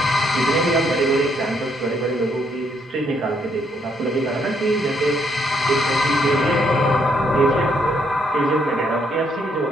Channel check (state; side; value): normal; both; correlation 0.72